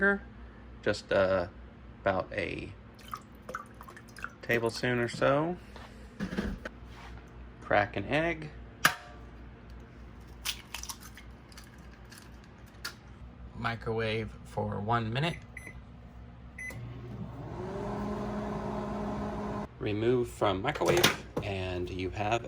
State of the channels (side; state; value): both; identical; correlation 1.00